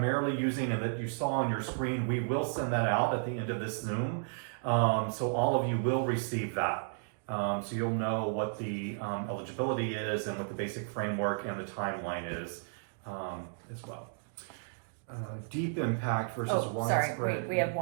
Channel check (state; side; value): silent; left; digital silence